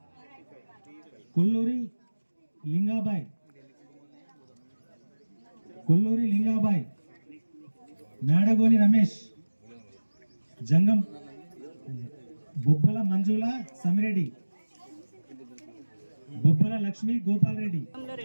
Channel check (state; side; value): inverted; both; correlation -1.00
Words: Kolluri Lingabai. Kolluri Lingabai. Medagoni Ramesh. Jangam Bobbala Manjula Samireddy. బొబ్బల లక్ష్మి గోపాల్ రెడ్డి.